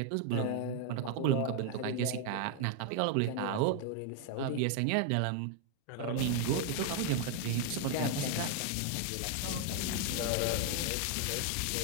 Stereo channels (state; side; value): different; both; correlation 0.00